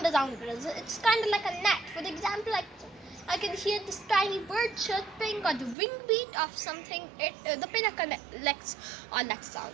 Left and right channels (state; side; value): drops out; left; at 5.8 s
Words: around us. It's kind of like a net. For example, I can hear this tiny bird chirping or the wing beat of something. The pinna collects all that sound.